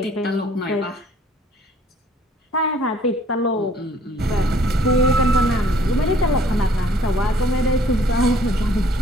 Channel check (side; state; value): both; normal; correlation 0.59